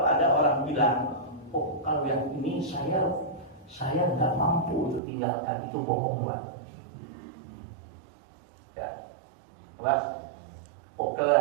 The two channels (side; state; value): left; drops out; at 5.0 s